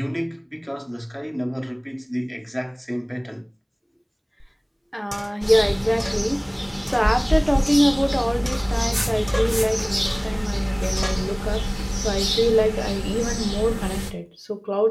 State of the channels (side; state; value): both; identical; correlation 1.00